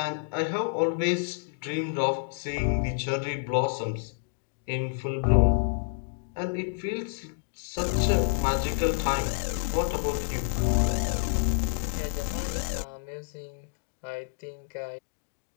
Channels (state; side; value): silent; right; digital silence